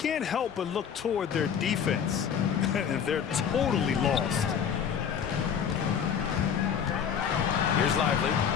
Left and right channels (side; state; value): right; quieter; 7.8 dB